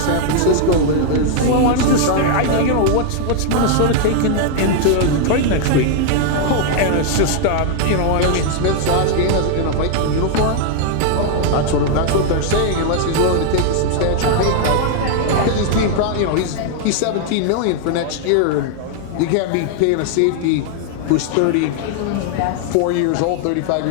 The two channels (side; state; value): both; different; correlation 0.00